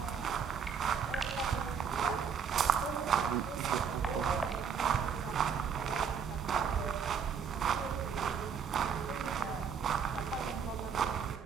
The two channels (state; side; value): quieter; left; 6.8 dB